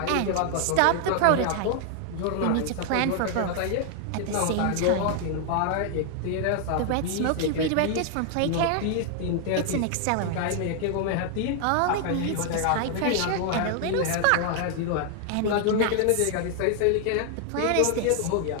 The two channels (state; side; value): different; both; correlation 0.00